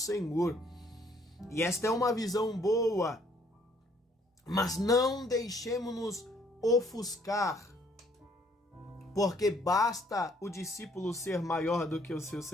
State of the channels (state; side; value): normal; both; correlation 0.64